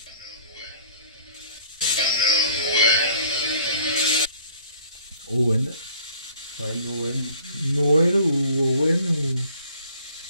Owen. Ouais, Noël. Noël ou Owen ou...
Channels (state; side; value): inverted; both; correlation -0.53